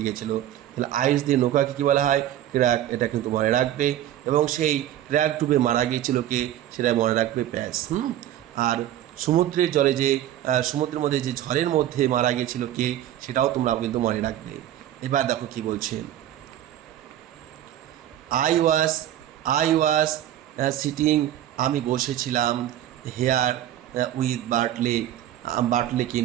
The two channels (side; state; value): left; quieter; 12.2 dB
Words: গিয়েছিল। তাহলে আইরিশদের নৌকাকে কী বলা হয়? ক্র্যাক, এটা কিন্তু মনে রাখবে। এবং সেই ক্র্যাক ডুবে মারা গিয়েছিল কে? সেটা মনে রাখবে প্যাচ। আর সমুদ্রের জলে যে সমুদ্রের মধ্যে যে ঝড়ের মধ্যে মারা গিয়েছিল কে? সেটাও তোমরা কিন্তু মনে রাখবে। এবার দেখো কি বলছে, আই ওয়াজ সিটিং, আমি বসেছিলাম, হেয়ার উইথ বার্টলেকে